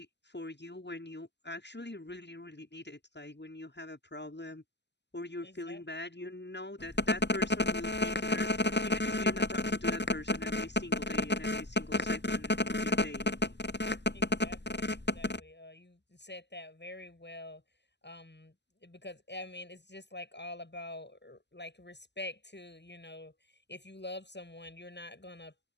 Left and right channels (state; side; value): late; right; 0.50 ms